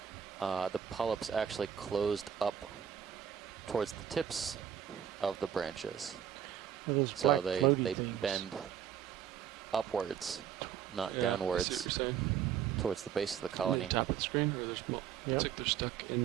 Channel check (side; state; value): left; quieter; 9.1 dB